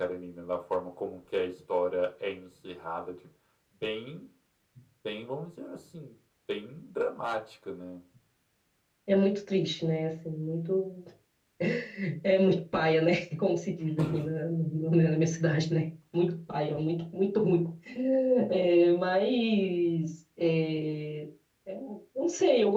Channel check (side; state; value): both; identical; correlation 1.00